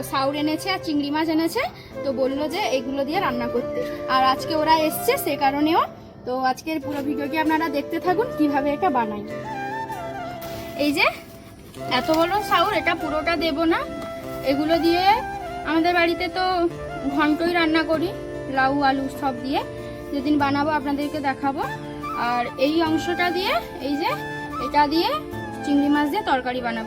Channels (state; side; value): identical; both; correlation 1.00